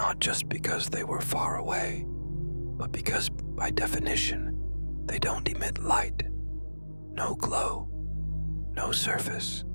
just because they were far away, but because, by definition, they don't emit light. No glow, no surface,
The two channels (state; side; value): inverted; both; correlation -1.00